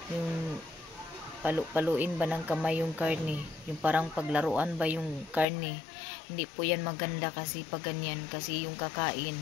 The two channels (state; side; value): drops out; right; at 5.5 s